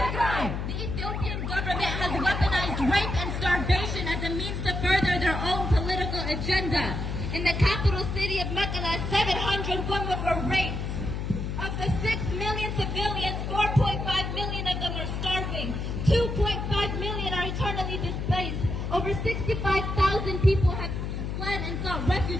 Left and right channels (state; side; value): noise; left; hum, 3 dB below the sound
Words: The Ethiopian government has weaponized rape and starvation as a means to further their own political agenda. In the capital city of Mekelle, 700 women were raped. Of the 6 million civilians, 4.5 million of them are starving. 2.5 million are eternally displaced. Over 65,000 people have fled and sought